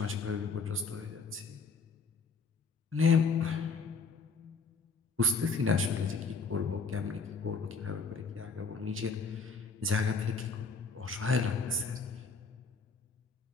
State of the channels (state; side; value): quieter; right; 4.4 dB